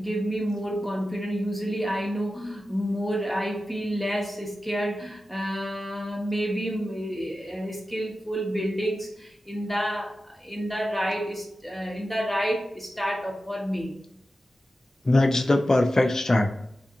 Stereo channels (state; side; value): normal; both; correlation 0.93